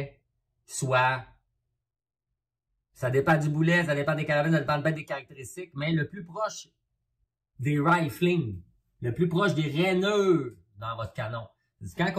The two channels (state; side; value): identical; both; correlation 1.00